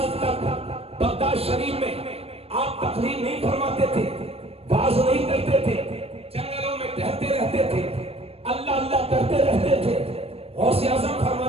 تک بغداد شریف میں آپ تقریر نہیں فرماتے تھے، واز نہیں کرتے تھے، جنگلوں میں ٹہلتے رہتے تھے، اللہ اللہ کرتے رہتے تھے۔ غوث اعظم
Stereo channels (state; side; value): late; left; 0.28 ms